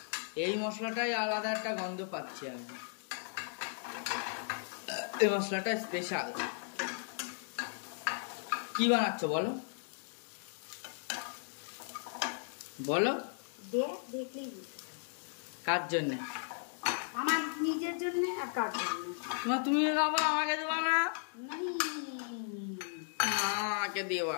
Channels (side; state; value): right; silent; digital silence